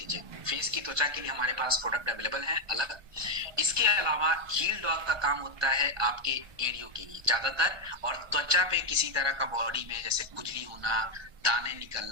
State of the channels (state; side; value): late; left; 1.2 ms